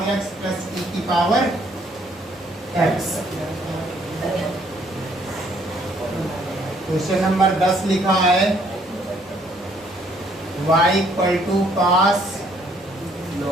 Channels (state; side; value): normal; both; correlation 0.65